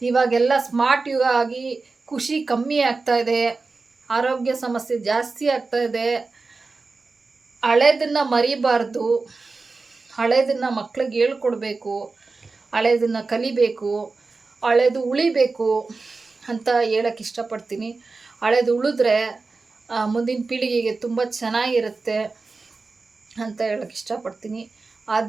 ಇವಾಗೆಲ್ಲ ಸ್ಮಾರ್ಟ್ ಯುಗ ಆಗಿ ಖುಷಿ ಕಮ್ಮಿ ಆಗ್ತಾಯಿದೆ, ಆರೋಗ್ಯ ಸಮಸ್ಯೆ ಜಾಸ್ತಿ ಆಗ್ತಾಯಿದೆ. ಹಳೇದನ್ನು ಮರಿಬಾರ್ದು, ಹಳೇದನ್ನು ಮಕ್ಳಿಗೆ ಹೇಳ್ಕೊಡ್ಬೇಕು, ಹಳೇದನ್ನು ಕಲಿಬೇಕು, ಹಳೇದು ಉಳಿಬೇಕು ಅಂತ ಹೇಳೋಕ್ಕೆ ಇಷ್ಟಪಡ್ತೀನಿ. ಹಳೇದು ಉಳಿದ್ರೆ ಮುಂದಿನ ಪೀಳಿಗೆಗೆ ತುಂಬ ಚೆನ್ನಾಗಿರುತ್ತೆ ಅಂತ ಹೇಳೋಕ್ಕೆ ಇಷ್ಟಪಡ್ತೀನಿ.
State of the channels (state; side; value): quieter; left; 4.0 dB